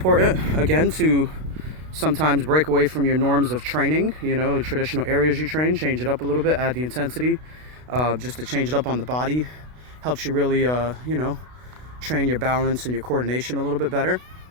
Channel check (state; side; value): late; left; 32 ms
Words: again to sometimes break away from your norms of training, traditional areas you train, change it up a little bit, add the intensity, just to change it up on the body. Helps you really train your balance and your coordination a little bit better.